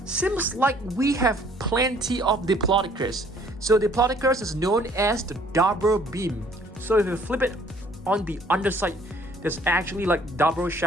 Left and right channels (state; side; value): normal; both; correlation 0.59